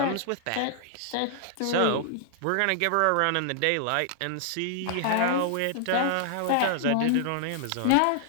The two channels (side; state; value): both; different; correlation -0.01